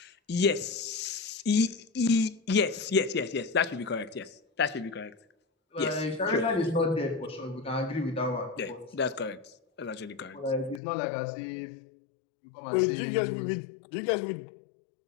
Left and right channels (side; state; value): right; drops out; at 10.8 s